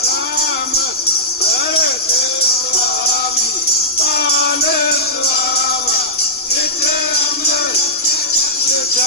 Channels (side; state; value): both; normal; correlation -0.15